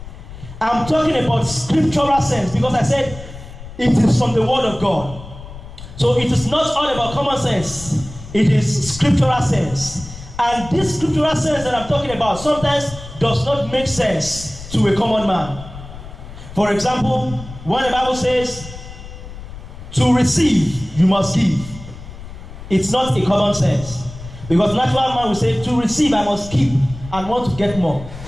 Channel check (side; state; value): left; noise; rumble, 14 dB below the sound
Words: I'm talking about scriptural sense, because I said it is from the word of God. So it is not all about common sense. It is scriptural sense. And this scriptural sense that I'm talking about sometimes does not make sense to a common man. For example, when the Bible says, to receive, you must give. It's not a common sense. Because natural man will say, to receive, I must keep and want to get more.